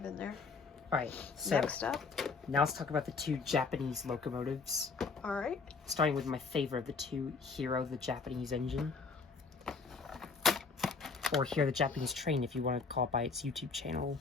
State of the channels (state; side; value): quieter; right; 4.7 dB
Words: in there. Alright, so Next up. now let's talk about the 2 Japanese locomotives. Alright. Starting with my favorite of the 2, Hero, the Japanese engine. Or Hero, the Japanese train, if you want to call it by its YouTube channel.